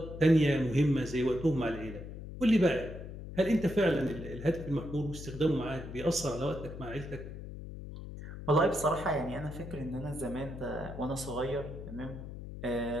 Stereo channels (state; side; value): noise; left; hum, 10 dB below the sound